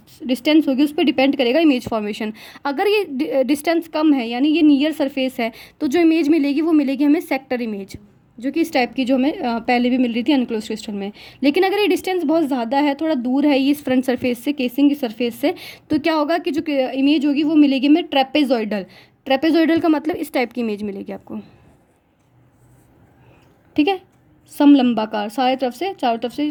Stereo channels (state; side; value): identical; both; correlation 1.00